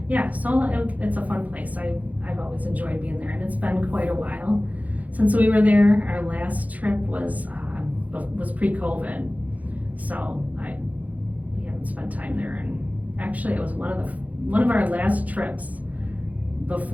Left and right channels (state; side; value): late; left; 0.075 ms